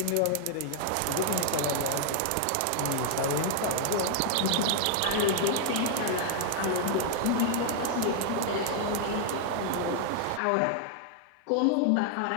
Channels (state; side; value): different; both; correlation -0.01